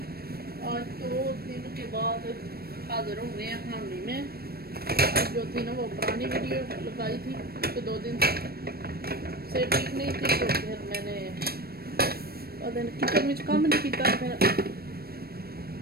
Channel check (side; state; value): left; late; 0.45 ms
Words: आज 2 दिन के बाद हाजिर हो गए हैं हामी में। जो थी ना वो पुरानी वीडियो लगाई थी कि 2 दिन से ठीक नहीं थी, तो फिर मैंने किचन में काम नहीं किया। फिर